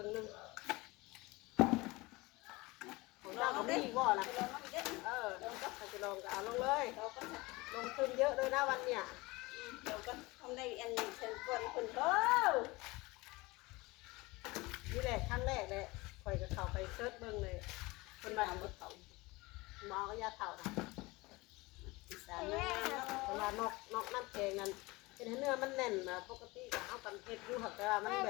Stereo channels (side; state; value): right; quieter; 22.6 dB